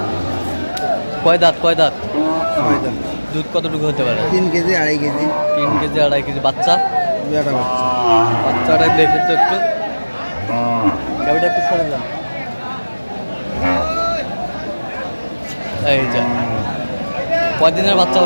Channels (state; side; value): inverted; both; correlation -1.00